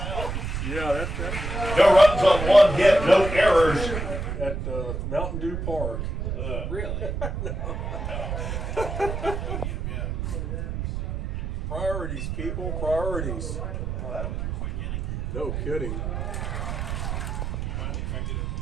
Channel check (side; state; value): right; noise; rumble, 3 dB below the sound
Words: Yeah, that no runs on 1 hit, no errors. at Mountain Dew Park. Really? Priorities, people. Priorities. No kidding.